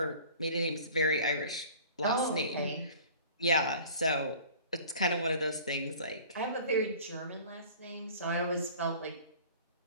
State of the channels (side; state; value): both; inverted; correlation -0.45